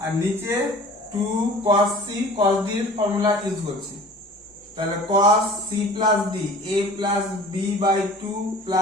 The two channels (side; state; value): both; normal; correlation 0.44